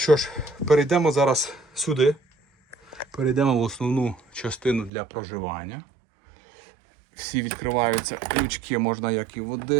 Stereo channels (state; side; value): drops out; left; at 4.9 s